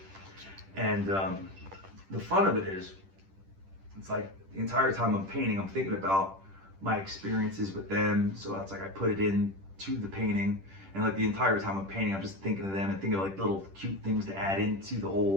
and the fun of it is, it's like the entire time I'm painting, I'm thinking about my experiences with them. So it's like I put it into the painting, and like the entire time I'm painting, I'm just thinking of them and thinking of like little cute things to add into the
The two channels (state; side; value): late; left; 10 ms